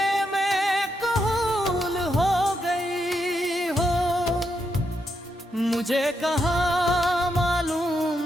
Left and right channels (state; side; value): normal; both; correlation 0.81